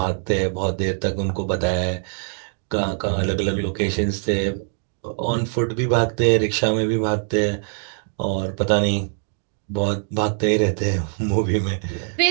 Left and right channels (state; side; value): silent; left; digital silence